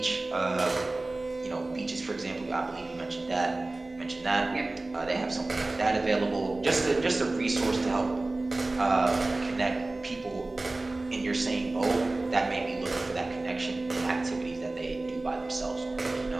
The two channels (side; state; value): left; quieter; 3.0 dB